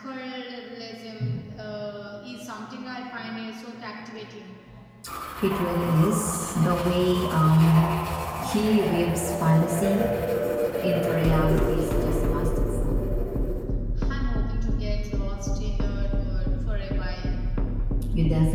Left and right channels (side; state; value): both; identical; correlation 1.00